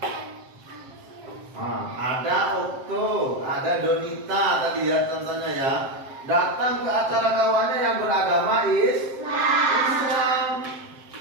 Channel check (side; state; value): left; late; 7.6 ms